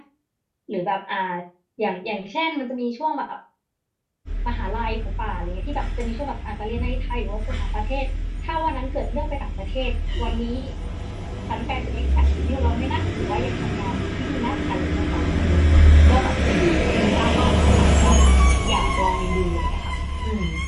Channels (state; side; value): identical; both; correlation 1.00